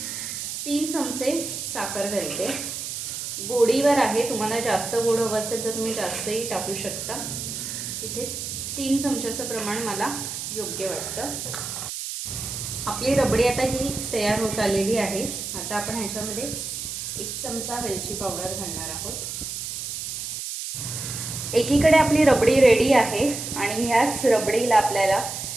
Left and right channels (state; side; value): noise; right; hiss, 6 dB below the sound